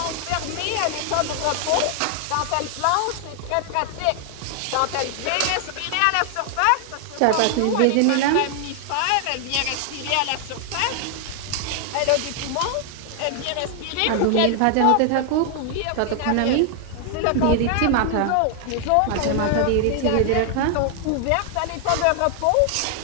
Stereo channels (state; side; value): different; both; correlation 0.00